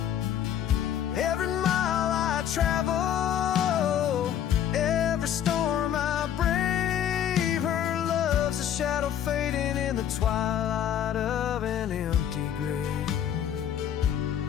Every mile I travel, every storm I brave, her love's a shadow fading in the twilight of an empty grave.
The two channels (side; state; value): right; quieter; 9.8 dB